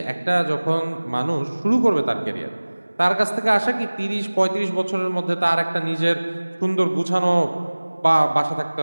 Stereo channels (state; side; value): inverted; both; correlation -1.00